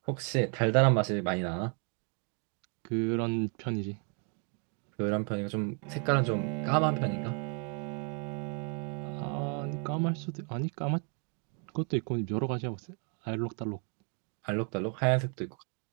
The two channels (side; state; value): left; quieter; 38.5 dB